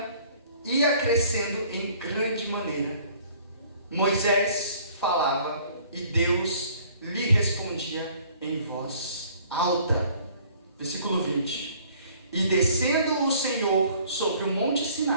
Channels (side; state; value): both; inverted; correlation -0.56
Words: ia crescendo em grande maneira. Moisés falava e Deus lhe respondia em voz alta. Versículo 20. E descendo o Senhor sobre o monte